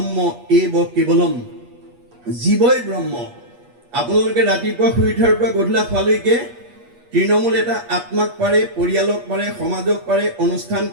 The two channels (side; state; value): left; late; 8.4 ms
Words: এব কেৱলম, জীৱই ব্ৰহ্ম। আপোনালোকে ৰাতিপুৱা শুই উঠাৰ পৰা গধূলা খোৱালৈকে তৃণমূল এটা আত্মাক পাৰে, পৰিয়ালক পাৰে, সমাজক পাৰে, অনুষ্ঠান